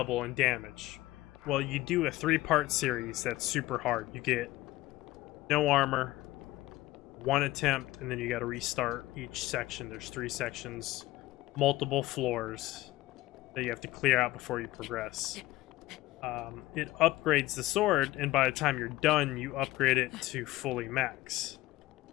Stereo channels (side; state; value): right; quieter; 17.6 dB